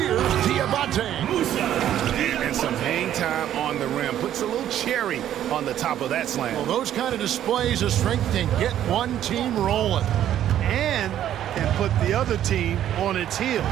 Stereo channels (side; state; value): left; quieter; 11.3 dB